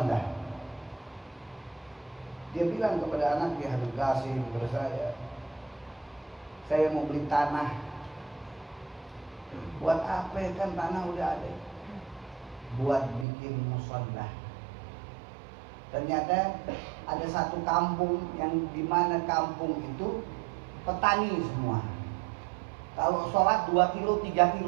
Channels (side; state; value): left; drops out; at 13.2 s